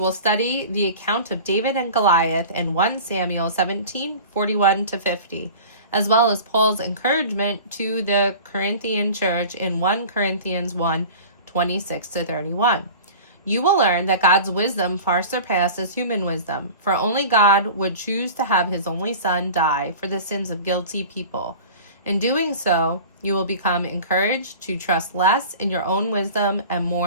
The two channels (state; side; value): inverted; both; correlation -0.38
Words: study the account of David and Goliath in 1 Samuel 17, 41 to 50, as well as Paul's encouragement to the Corinthian church in 1 Corinthians 1, 26 to 31. You will learn that God's wisdom far surpasses human wisdom, for only God would choose to have his only son die for the sins of guilty people. In doing so, you will become encouraged to trust less in your own wisdom and